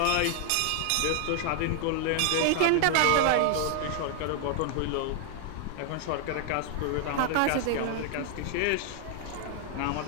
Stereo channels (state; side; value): different; both; correlation 0.00